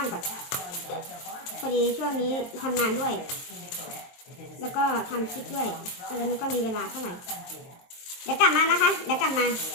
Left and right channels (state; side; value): late; right; 23 ms